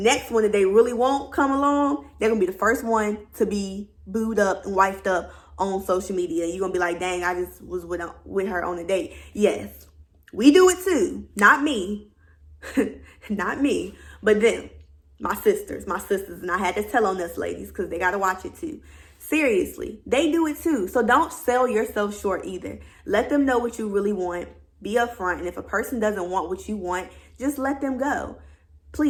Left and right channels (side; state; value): both; identical; correlation 1.00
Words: one that they really want come along, they're gonna be the first one to be booed up and wifed up on social media. You're gonna be like, dang, I just was with her on a date. Yes, we do it too. Not me. Not me, but them. My sisters. And I had to tell on this, ladies, because they gotta watch it too. Seriously, they do it too. So don't sell yourself short either. Let them know what you really want. Be upfront. And if a person doesn't want what you want, just let them go.